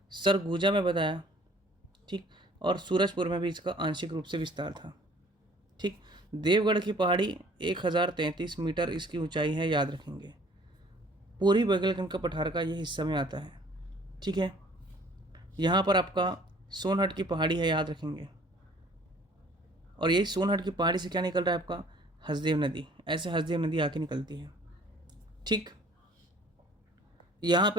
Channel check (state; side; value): normal; both; correlation 0.55